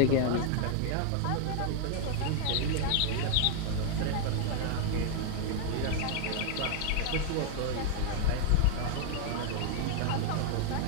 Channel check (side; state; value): both; different; correlation 0.00